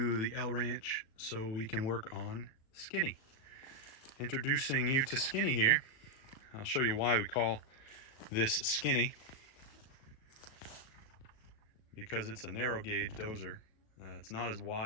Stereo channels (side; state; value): right; late; 37 ms